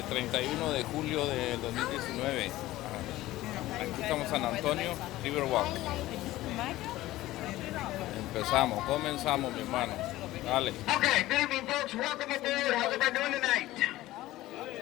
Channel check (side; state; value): right; quieter; 16.6 dB